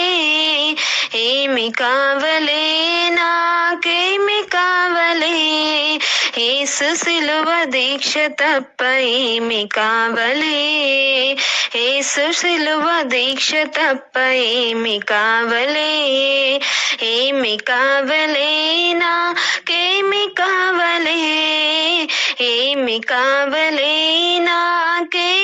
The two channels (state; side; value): identical; both; correlation 1.00